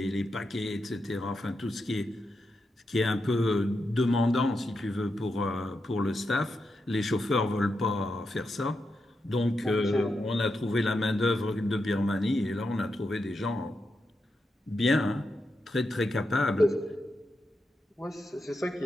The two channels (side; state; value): both; normal; correlation 0.86